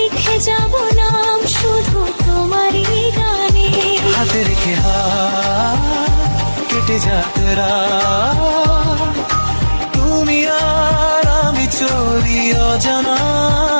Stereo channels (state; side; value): inverted; both; correlation -1.00